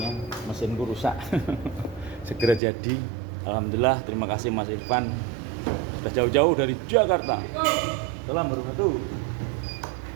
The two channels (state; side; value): drops out; left; at 2.6 s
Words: Mesinku rusak segera jadi. Alhamdulillah, terima kasih Mas Irfan. Sudah jauh-jauh dari Jakarta. Salam warahmatullahi.